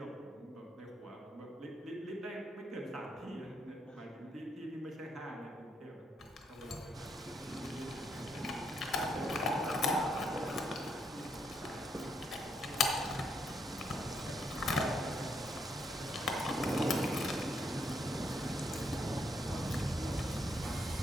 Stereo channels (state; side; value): normal; both; correlation 0.76